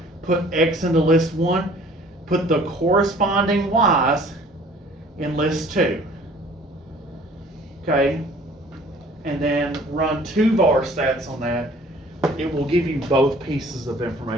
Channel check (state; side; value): normal; both; correlation 0.52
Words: X into list 1, put the corresponding Y's in list 2. Okay? And then run 2 var stats on that. It will give you both pieces of